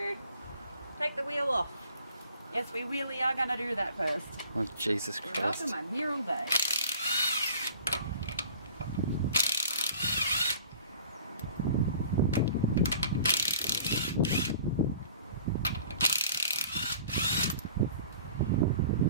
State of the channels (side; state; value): both; inverted; correlation -0.48